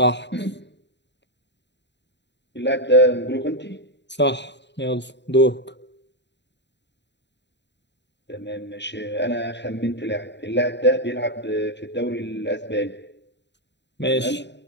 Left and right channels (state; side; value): late; right; 0.51 ms